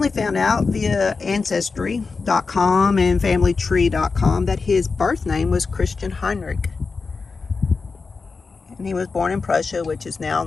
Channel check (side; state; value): right; quieter; 4.5 dB